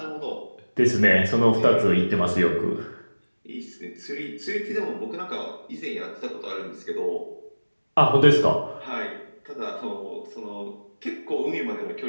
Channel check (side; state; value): both; inverted; correlation -1.00